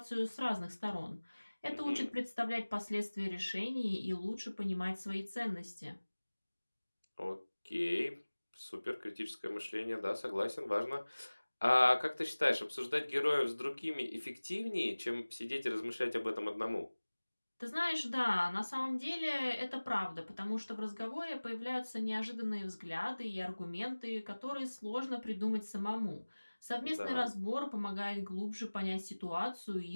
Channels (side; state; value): both; inverted; correlation -1.00